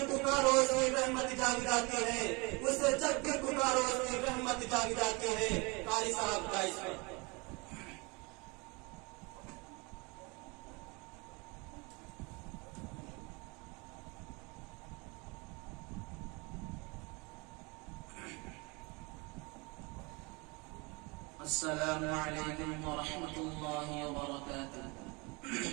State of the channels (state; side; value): quieter; left; 28.0 dB